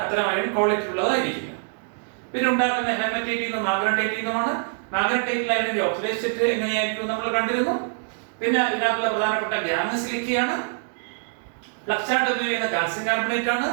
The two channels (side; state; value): left; silent; 62 dB below the other